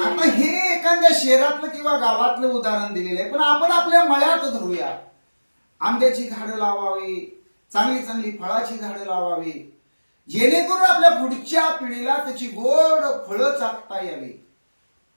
आता हे एखाद्या शहरातलं किंवा गावातलं उदाहरण दिलेलं आहे, पण आपण आपल्या मळ्यात धरूया. आंब्याची झाडं लावावी, चांगली चांगली फळाची झाडं लावावी, जेणेकरून आपल्या पुढच्या पिढीला त्याची गोड फळं चाखता यावी,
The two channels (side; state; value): both; inverted; correlation -1.00